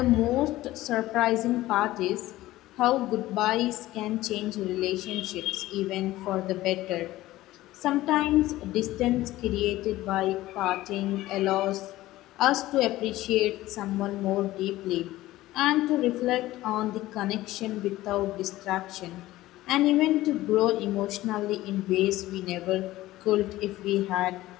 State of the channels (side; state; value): right; quieter; 16.5 dB